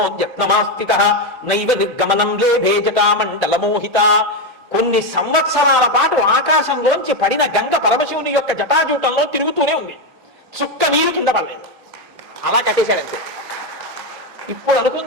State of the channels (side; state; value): both; normal; correlation 0.08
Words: నైవ నిర్గమనం లేభే జటామండలమోహిత. కొన్ని సంవత్సరాల పాటు ఆకాశంలోంచి పడిన గంగ పరమశివుని యొక్క జటాజూటంలో తిరుగుతూనే ఉంది. చుక్క నీరు కింద పడలేదు. అలా కట్టేశాడంతే. ఇప్పుడు